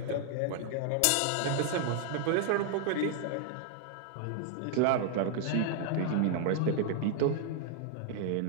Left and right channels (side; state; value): both; different; correlation 0.00